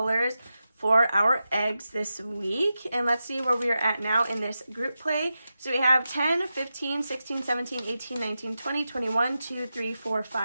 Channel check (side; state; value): both; inverted; correlation -0.91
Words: for our eggs this week. And let's see where we are at now in this group play. So we have 10, 15, 16, 17, 18, 19, 20, 21, 2, 3, 4,